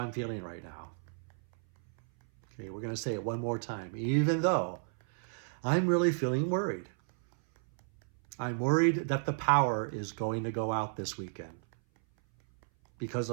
feeling right now. Okay, we're going to say it one more time. Even though I'm really feeling worried. I'm worried that the power is going to go out this weekend because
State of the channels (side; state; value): left; silent; 56 dB below the other